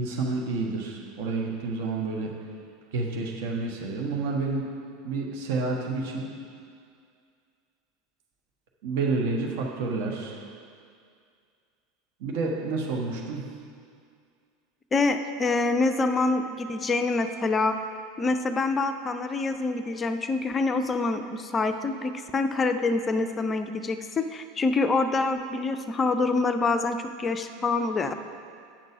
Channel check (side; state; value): both; normal; correlation 0.61